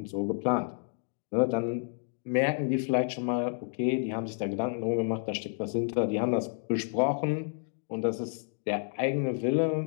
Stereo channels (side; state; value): right; silent; digital silence